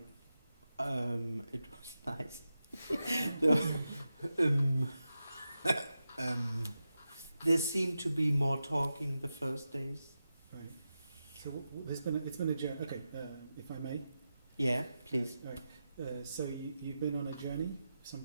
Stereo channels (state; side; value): inverted; both; correlation -0.91